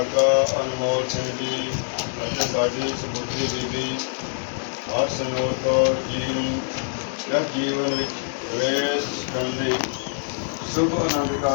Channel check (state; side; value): silent; right; digital silence